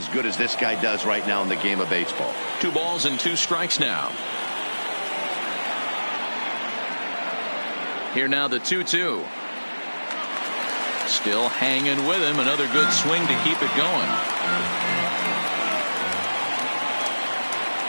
good as this guy does right now in the game of baseball. 2 balls and 2 strikes now. Here now the 2-2. Still hanging with him. Another good swing to keep it going.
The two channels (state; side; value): inverted; both; correlation -1.00